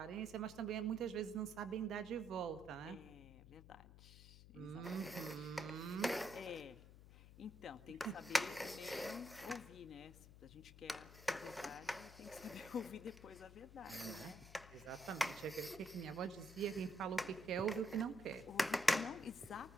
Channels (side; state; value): left; noise; hum, 17 dB below the sound